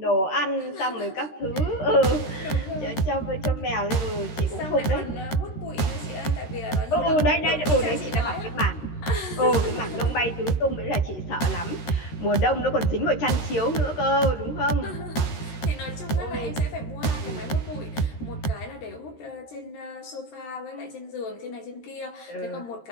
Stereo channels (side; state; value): right; late; 13 ms